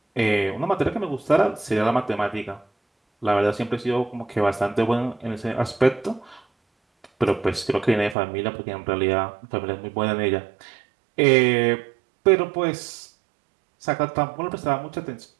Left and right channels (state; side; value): drops out; left; at 8.2 s